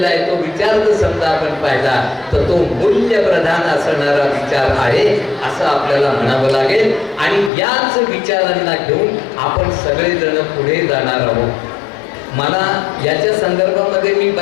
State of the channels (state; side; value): drops out; right; at 7.5 s